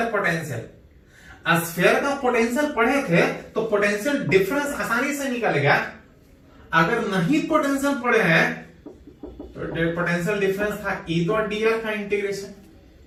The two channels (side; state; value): both; identical; correlation 1.00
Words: पोटेंशियल, स्फीयर का पोटेंशियल पढ़े थे तो पोटेंशियल डिफरेंस आसानी से निकलेगा। अगर नहीं पोटेंशियल पढ़े हैं तो पोटेंशियल डिफरेंस था ई डॉट डी आर का इंटीग्रेशन।